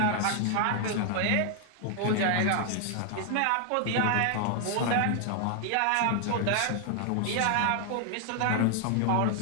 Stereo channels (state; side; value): different; both; correlation 0.00